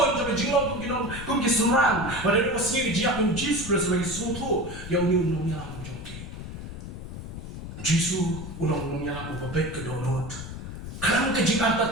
sampai jinglong kum kiserang. Ada dua sini dia pun Yesus sebagai suatu yang ulang yalam. Yesus ulang yalam babet ke donut. Kelam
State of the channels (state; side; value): noise; left; rumble, 9 dB below the sound